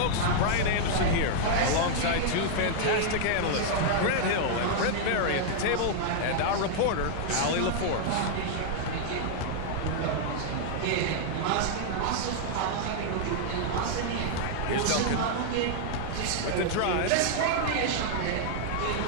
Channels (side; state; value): both; different; correlation -0.01